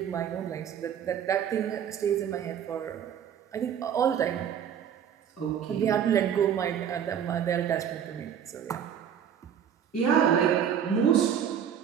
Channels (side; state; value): left; quieter; 8.7 dB